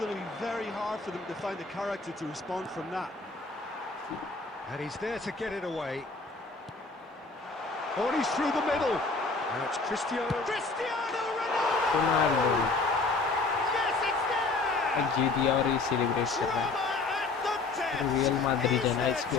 to be very hard for them to find the character to respond from that. And he's there to get it away. Oh, and he's through the middle. Now it's Cristiano Ronaldo! Ronaldo Yes, it's there! जीत दिया और ये celebrate कर रहा है। Drama at the death. Real Madrid Is है ना there इसकी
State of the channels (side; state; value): right; quieter; 3.8 dB